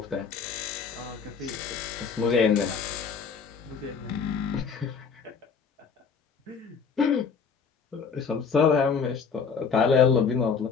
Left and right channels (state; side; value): quieter; right; 5.9 dB